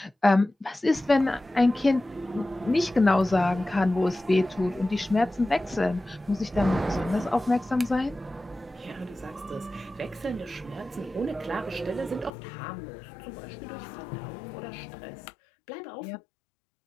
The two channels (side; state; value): right; drops out; at 12.3 s